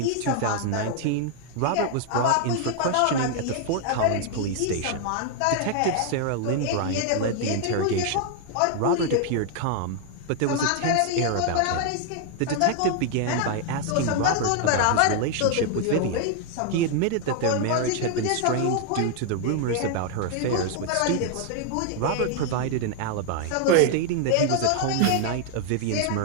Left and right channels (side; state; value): both; different; correlation 0.00